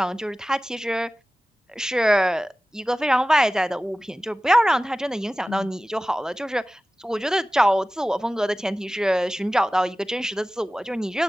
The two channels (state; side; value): normal; both; correlation 0.96